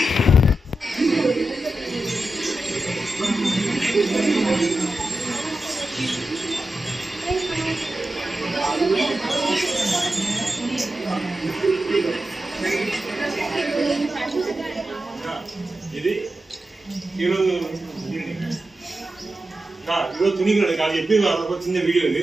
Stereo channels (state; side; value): normal; both; correlation 0.91